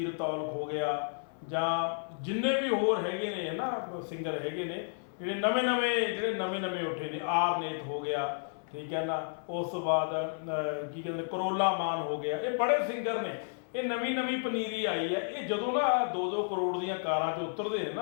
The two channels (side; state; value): right; silent; 56 dB below the other